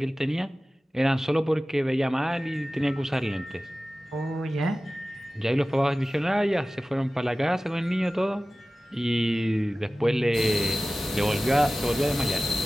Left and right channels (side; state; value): both; normal; correlation 0.96